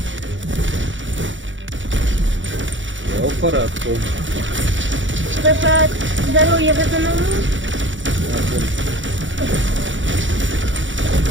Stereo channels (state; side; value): late; left; 0.55 ms